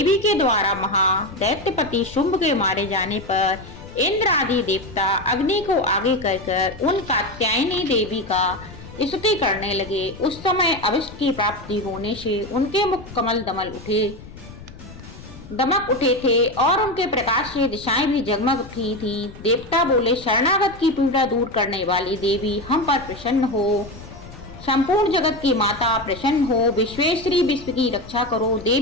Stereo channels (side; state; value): left; noise; rumble, 17 dB below the sound